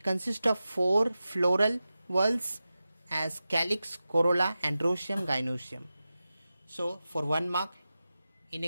consists of 4 floral whorls as calyx, corolla, androecium, gynoecium. So for 1 mark in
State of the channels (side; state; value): both; inverted; correlation -0.94